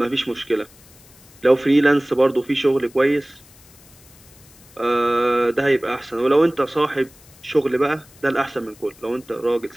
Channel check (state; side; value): noise; left; hiss, 25 dB below the sound